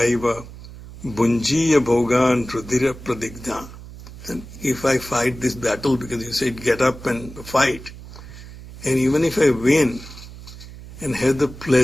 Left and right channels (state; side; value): noise; right; hum, 15 dB below the sound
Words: aiva bunjiya bhogan rudira pradigdha. And if I fight this battle, because you said get up and fight, and even if I win and have the